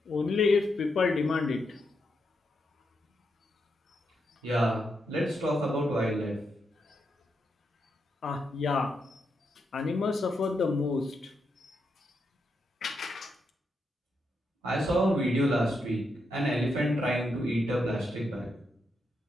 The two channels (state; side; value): normal; both; correlation 0.82